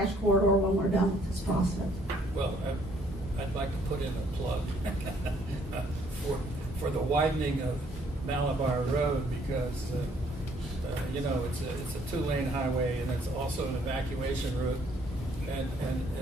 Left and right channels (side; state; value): both; normal; correlation 0.64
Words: corridor when we're done with this process. Well, I'd like to put in a plug for the widening of Malabar Road, because it's a 2-lane highway, and it's also an evacuation route,